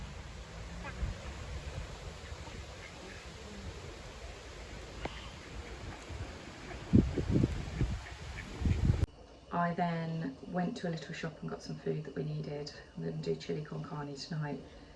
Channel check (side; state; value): both; identical; correlation 1.00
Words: I then went to a little shop and got some food that we needed. I'm going to do chili con carne tonight.